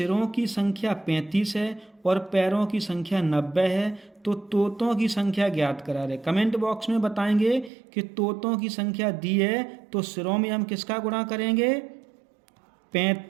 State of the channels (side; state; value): left; drops out; at 7.7 s